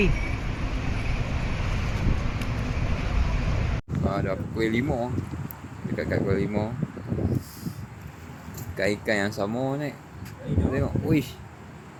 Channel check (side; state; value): both; identical; correlation 1.00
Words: Dah pukul 5. Dekat pukul 5. Ikan yang sama ni. Tengok. Uish.